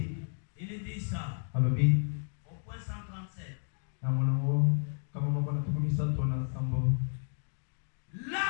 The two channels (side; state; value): right; silent; digital silence